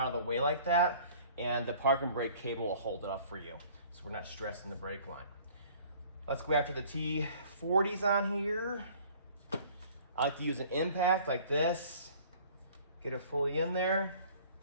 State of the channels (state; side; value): inverted; both; correlation -0.52